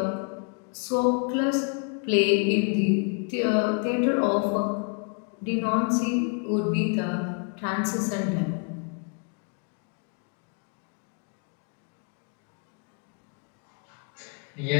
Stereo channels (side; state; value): right; quieter; 37.3 dB